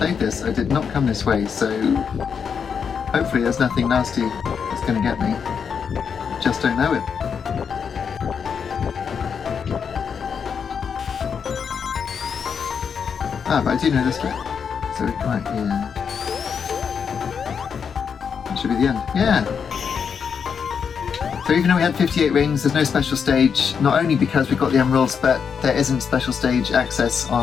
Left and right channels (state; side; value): quieter; right; 6.6 dB